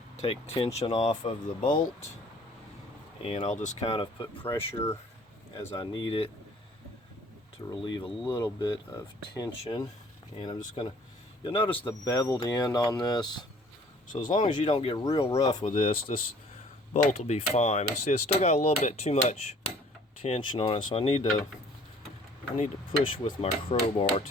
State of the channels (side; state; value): both; normal; correlation 0.55